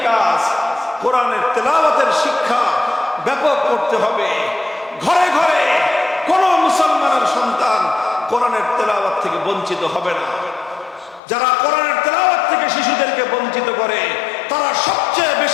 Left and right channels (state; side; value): drops out; right; at 11.2 s